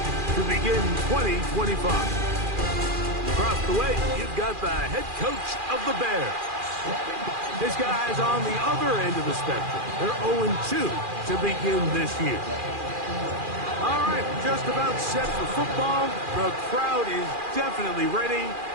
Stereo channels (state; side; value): late; left; 2.4 ms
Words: begin 2025. Across the way, you've got the head coach of the Bears. His guys on the other end of the spectrum. They're 0-2 to begin this year. All right, just about set for football. The crowd is definitely ready.